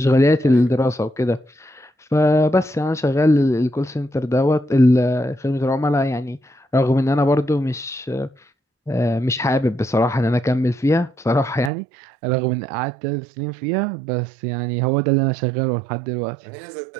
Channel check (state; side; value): drops out; left; at 11.7 s